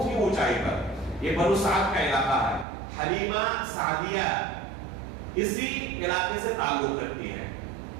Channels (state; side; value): drops out; left; at 2.7 s